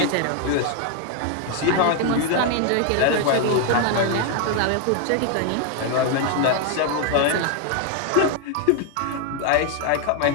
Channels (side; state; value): both; different; correlation 0.00